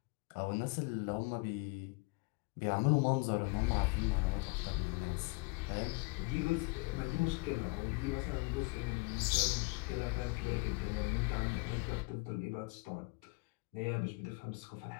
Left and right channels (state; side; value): quieter; right; 28.1 dB